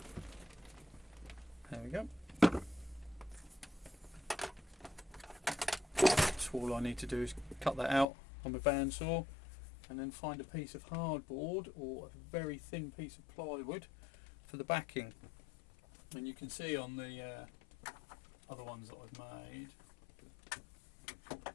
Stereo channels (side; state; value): right; drops out; at 8.1 s